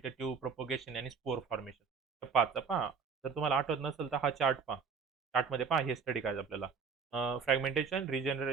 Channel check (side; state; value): left; quieter; 5.5 dB